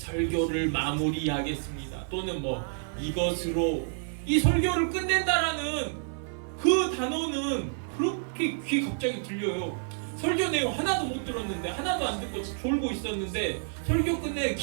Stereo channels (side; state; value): left; silent; 57 dB below the other